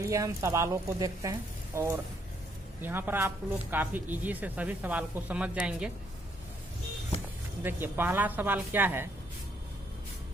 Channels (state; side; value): normal; both; correlation 0.71